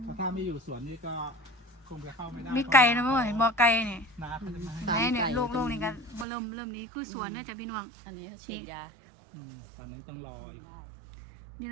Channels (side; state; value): left; drops out; at 6.2 s